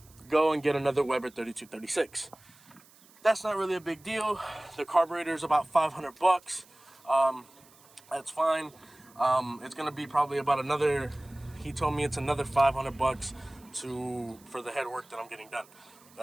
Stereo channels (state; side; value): noise; right; hiss, 26 dB below the sound